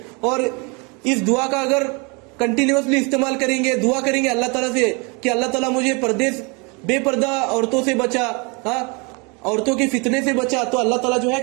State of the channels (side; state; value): left; quieter; 30.7 dB